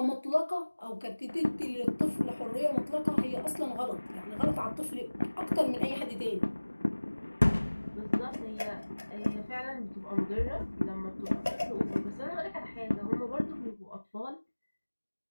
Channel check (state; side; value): inverted; both; correlation -1.00